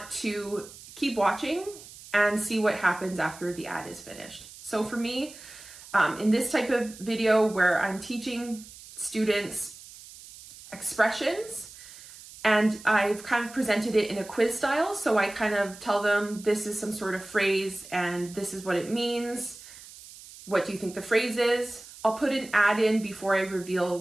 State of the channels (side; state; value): right; noise; hiss, 18 dB below the sound